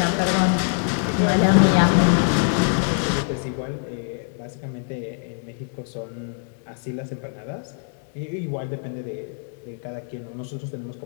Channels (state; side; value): silent; right; 61 dB below the other